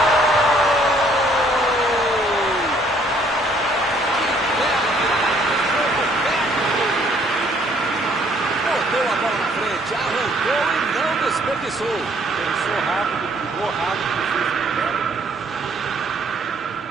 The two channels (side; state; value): both; normal; correlation 0.63